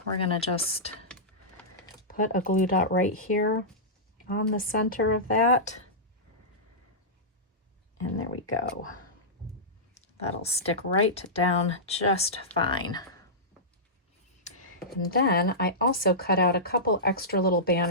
We're going to just put a glue dot right here on the center of that. And there we go. That'll stick right down just fine. And then I also cut out a couple extra little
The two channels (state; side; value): normal; both; correlation -0.15